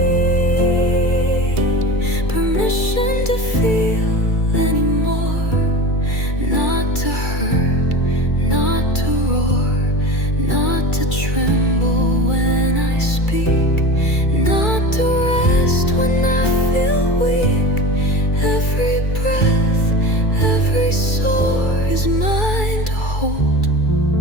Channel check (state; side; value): late; right; 2.3 ms